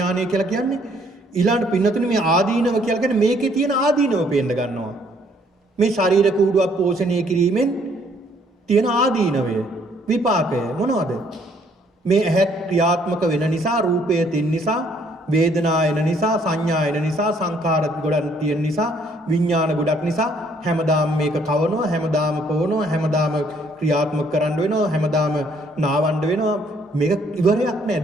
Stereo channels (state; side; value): normal; both; correlation 0.65